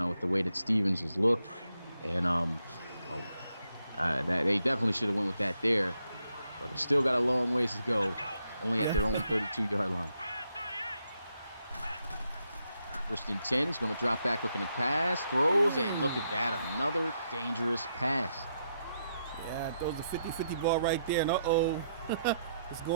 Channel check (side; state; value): both; inverted; correlation -0.79